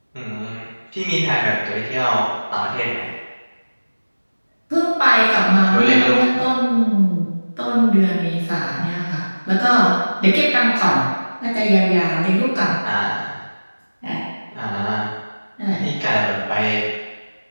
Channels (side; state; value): both; inverted; correlation -1.00